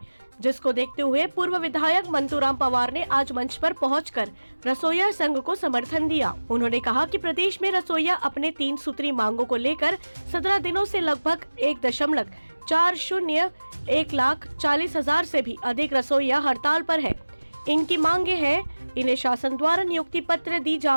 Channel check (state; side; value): inverted; both; correlation -1.00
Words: जिसको देखते हुए पूर्व विधायक मंतूराम पवार ने आज मंच पर पहुंचकर रसोइया संघ को समर्थन दिया। उन्होंने कहा कि प्रदेश में रसोइया अपने 3 सूत्री मांगों को लेकर 17 दिनों से लगभग 1,40,00,000 से भी अधिक रसोइया हड़ताल पर है। इनकी मांगे हैं, इन्हें शासन द्वारा नियुक्ति पत्र दी